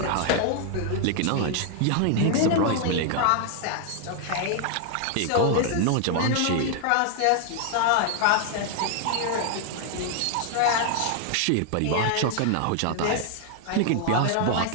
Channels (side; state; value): both; different; correlation 0.00